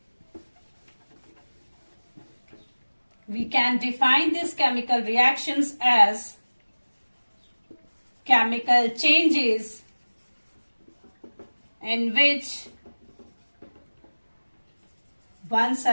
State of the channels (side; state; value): both; inverted; correlation -1.00